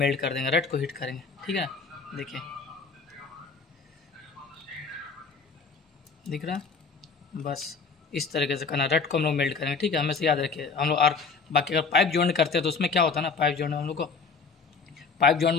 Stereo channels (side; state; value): right; quieter; 4.9 dB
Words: कर देंगे, रेड को हीट करेंगे, ठीक है। देखिए दिख रहा है, बस इस तरीके से करना, रेड को हम लोग मेल्ट करेंगे, ठीक है। हमेशा याद रखिए हम लोग। और बाकी अगर पाइप जॉइंट करते हैं तो उसमें क्या होता है ना, पाइप जॉइंट में हम लोग को, पाइप जॉइंट